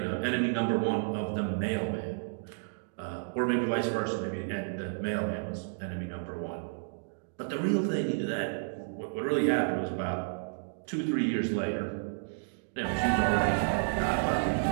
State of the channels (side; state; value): left; silent; digital silence